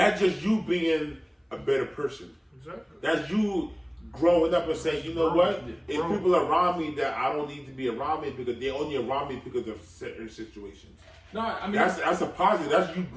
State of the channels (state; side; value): identical; both; correlation 1.00